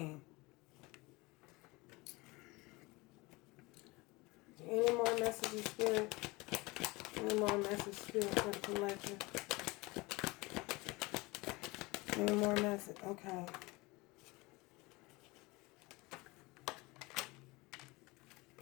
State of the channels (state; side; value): quieter; right; 23.6 dB